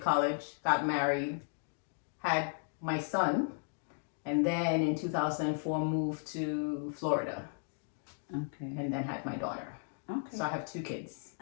got married, had my son, and then in 2004 moved to Florida. Okay. And then had my daughter. Okay. So I have 2 kids.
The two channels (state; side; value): silent; right; digital silence